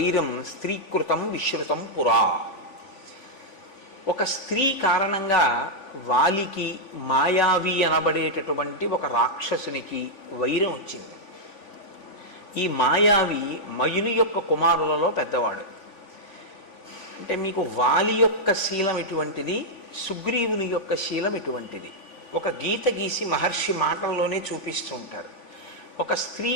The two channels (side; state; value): right; late; 3.5 ms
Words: స్త్రీకృతం విశ్రుతం పురా. ఒక స్త్రీ కారణంగా వాలికి మాయావి అనబడేటటువంటి ఒక రాక్షసునికి వైరం వచ్చింది. ఈ మాయావి మయుని యొక్క కుమారులలో పెద్దవాడు. అంటే మీకు వాలి యొక్క శీలం ఎటువంటిది, సుగ్రీవుని యొక్క శీలం ఎటువంటిది ఒక గీత గీసి మహర్షి మాటల్లోనే చూపిస్తూ ఉంటారు. ఒక స్త్రీ